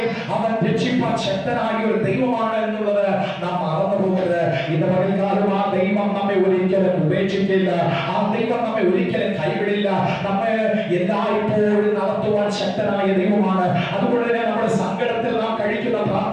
അവൻ രക്ഷിപ്പാൻ ശക്തനായ ഒരു ദൈവമാണ് എന്നുള്ളത് നാം മറന്നു പോകരുത്. ഇന്ന് പകൽക്കാലം ആ ദൈവം നമ്മെ ഒരിക്കലും ഉപേക്ഷിക്കില്ല, ആ ദൈവം നമ്മെ ഒരിക്കലും കൈവിടില്ല. നമ്മെ എല്ലായ്പ്പോഴും നടത്തുവാൻ ശക്തനായ ദൈവമാണ്. അതുകൊണ്ട് തന്നെ നമ്മുടെ സങ്കടത്തിൽ നാം കഴിക്കുന്ന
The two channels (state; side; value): identical; both; correlation 1.00